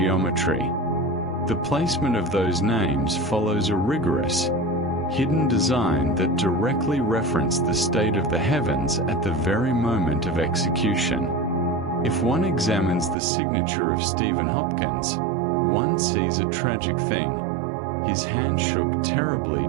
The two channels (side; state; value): left; drops out; at 13.2 s